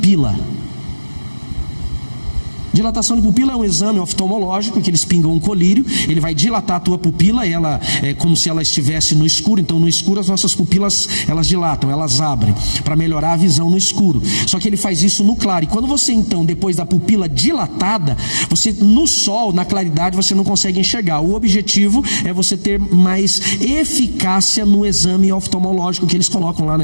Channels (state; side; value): inverted; both; correlation -1.00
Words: Dilatação de pupila é um exame oftalmológico que eles pingam um colírio, ele vai dilatar a tua pupila, e ela é como se ela estivesse no escuro. Então no escuro as nossas pupilas, elas dilatam, elas abrem para melhorar a visão no escuro. Só que ele faz isso no claro. E quando você então, depois da pupila dilatada, você no sol, na claridade, você não consegue enxergar. O objetivo é você ter mais eficácia no exame oftalmológico que eles colocam lá